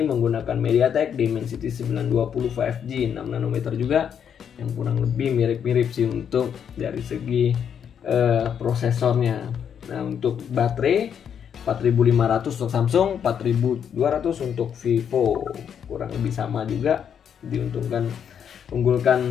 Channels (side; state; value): right; quieter; 8.1 dB